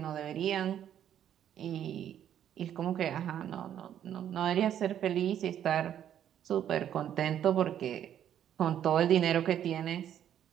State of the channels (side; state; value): left; quieter; 10.2 dB